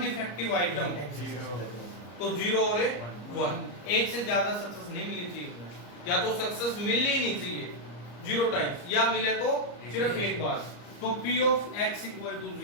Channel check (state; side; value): late; right; 34 ms